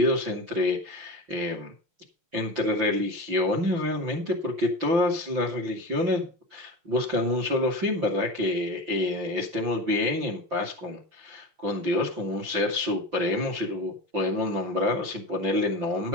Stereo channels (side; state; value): left; late; 5.9 ms